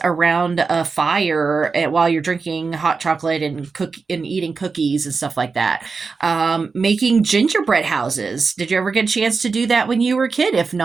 around a fire while you're drinking hot chocolate and eating cookies and stuff like that. Making gingerbread houses. Did you ever get a chance to do that when you were a kid? If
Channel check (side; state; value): left; quieter; 4.7 dB